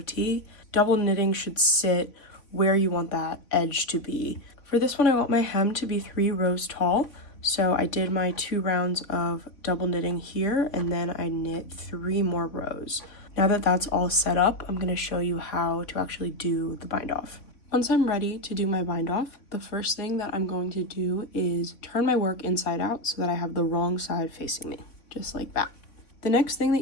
Double knitting should sit where you want that edge to be. For this one, I want my hem to be 3 rows tall, so I did my 2 rounds of double knitting here, and then I knit 3 more rows. Now that that's all set up, I'm gonna show you how to actually do the bind off. Once I'm ready to do my bind off, the first thing that I'm going to do is turn my work inside out so that I have the wrong side facing me, just like that. The next thing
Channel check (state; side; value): late; right; 3.6 ms